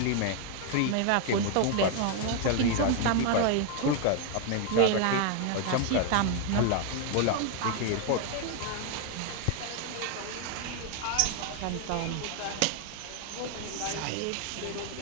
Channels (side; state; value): both; different; correlation 0.00